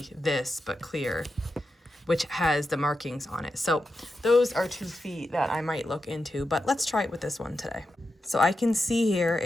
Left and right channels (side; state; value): both; normal; correlation 0.89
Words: this but clear, which has the markings on it. So those are 2 feet that I might look into, but let's try it with this one today. So I can see here